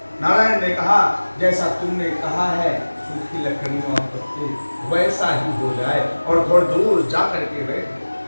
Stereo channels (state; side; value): inverted; both; correlation -1.00